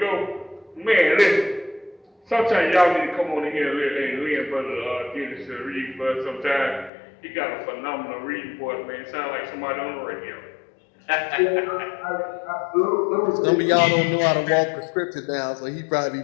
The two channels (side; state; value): right; drops out; at 6.9 s